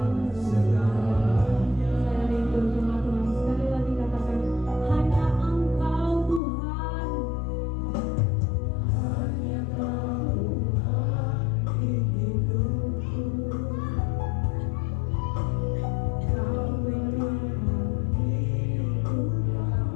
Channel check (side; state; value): right; drops out; at 6.4 s